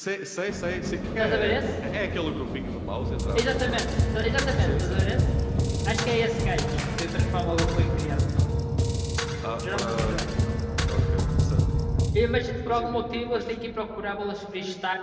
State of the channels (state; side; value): identical; both; correlation 1.00